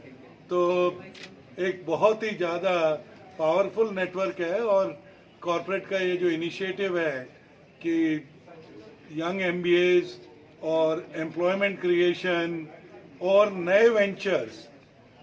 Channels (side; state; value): both; identical; correlation 1.00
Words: तो एक बहुत ही ज़्यादा पावरफुल नेटवर्क है। और कॉरपोरेट का ये जो इनिशिएटिव है कि यंग MBAs और एम्प्लॉयमेंट क्रिएशन और नए वेंचर्स,